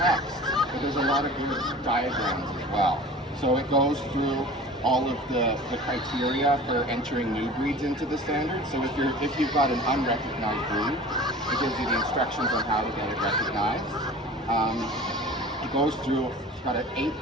but there's a lot of good diagrams as well. So it goes through all of the criteria for entering new breeds into the standard. So if you've got an unrecognized breed, it gives you the instructions on how to get it recognized. It goes through, it's got an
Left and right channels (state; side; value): normal; both; correlation 0.40